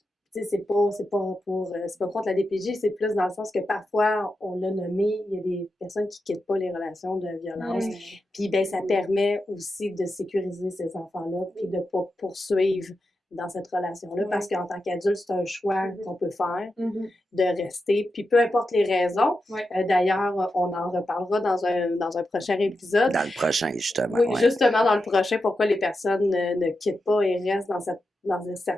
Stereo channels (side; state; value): both; normal; correlation 0.89